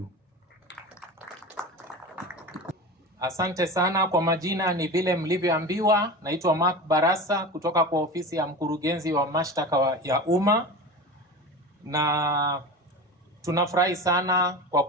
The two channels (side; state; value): both; normal; correlation 0.29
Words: Asante sana. Kwa majina ni vile mlivyoambiwa, naitwa Mark Barasa kutoka kwa ofisi ya mkurugenzi wa mashtaka ya umma, na tunafurahi sana kwa